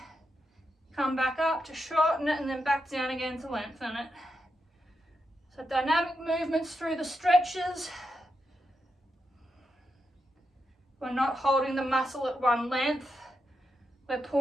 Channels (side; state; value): both; normal; correlation 0.86